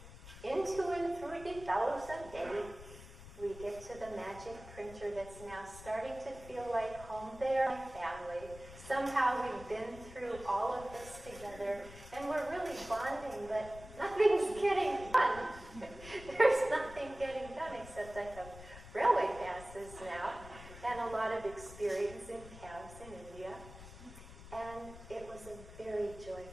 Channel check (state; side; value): noise; left; rumble, 16 dB below the sound